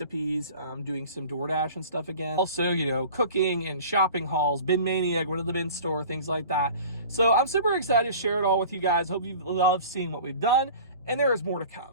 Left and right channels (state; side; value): inverted; both; correlation -0.42